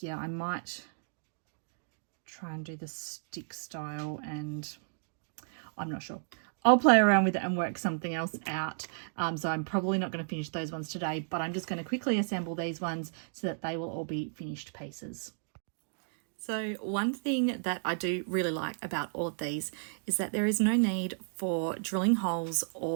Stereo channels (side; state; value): left; silent; digital silence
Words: yeah, I might try and do the stick style, and I'm not sure. I'll play around with it and work something else out. So I'm probably not going to finish those ones today, but I'm just going to quickly assemble these ones so that they will all be finished pieces. So one thing that I do really like about all of these is that there is no need for drilling holes